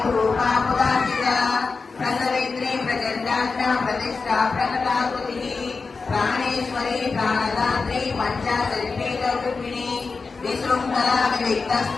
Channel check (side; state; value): right; quieter; 4.4 dB